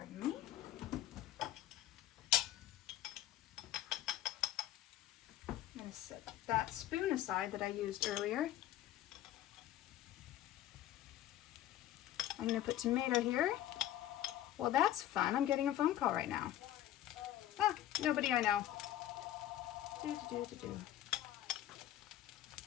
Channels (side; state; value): right; quieter; 12.8 dB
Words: me. I'm going to set that spoon aside that I used earlier. I'm going to put tomato here. Well, that's fun. I'm getting a phone call right now. Ah, nobody I know.